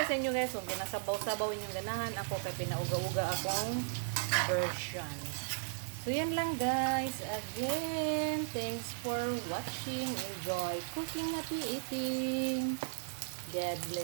sa inyo guys, kung ginasabaw-sabaw inyong ganahan, ako kay pinauga-uga akong version. So yan lang guys. Again, thanks for watching. Enjoy cooking, happy eating. God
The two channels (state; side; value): silent; left; digital silence